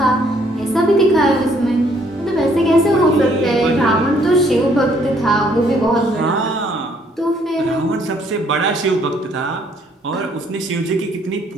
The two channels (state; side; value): normal; both; correlation 0.65